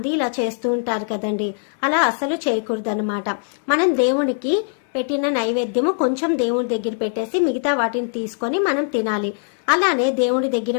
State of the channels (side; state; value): right; silent; 65 dB below the other